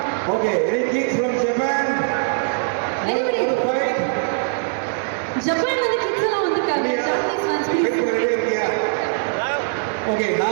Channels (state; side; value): silent; left; digital silence